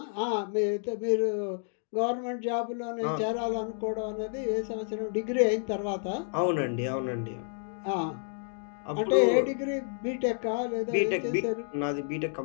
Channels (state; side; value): silent; right; digital silence